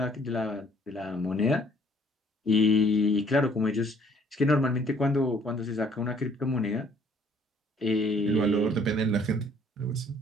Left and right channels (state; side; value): normal; both; correlation 0.61